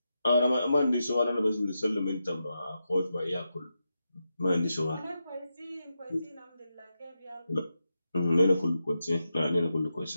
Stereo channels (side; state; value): both; inverted; correlation -0.88